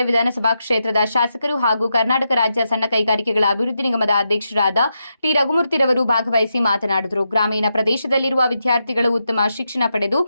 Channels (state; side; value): inverted; both; correlation -0.86